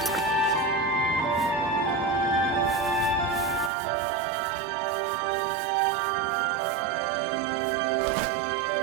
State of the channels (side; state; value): left; drops out; at 3.7 s